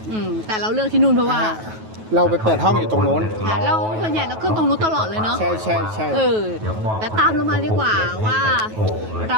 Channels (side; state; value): left; late; 9.3 ms